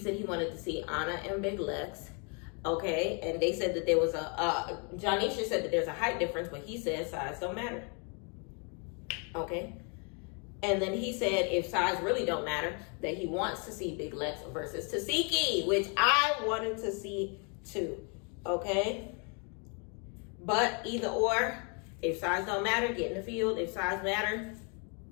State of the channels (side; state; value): right; quieter; 36.3 dB